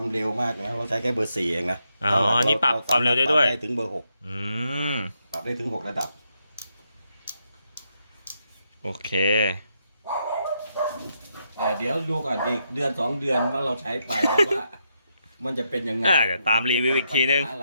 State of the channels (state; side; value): inverted; both; correlation -0.80